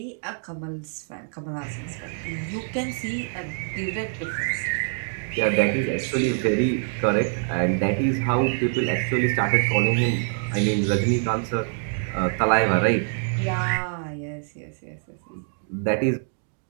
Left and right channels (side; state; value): left; silent; 58 dB below the other